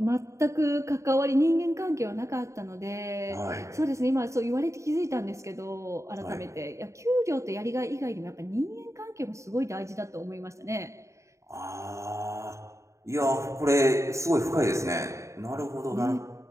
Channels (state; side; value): late; left; 0.14 ms